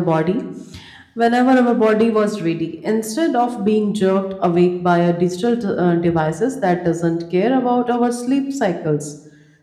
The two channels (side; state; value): both; identical; correlation 1.00